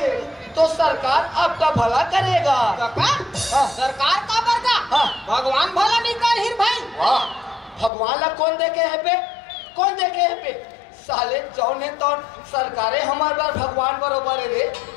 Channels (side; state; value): right; drops out; at 7.9 s